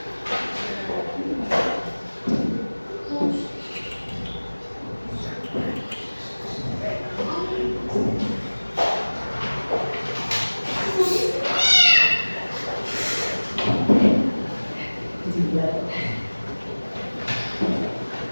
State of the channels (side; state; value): both; inverted; correlation -1.00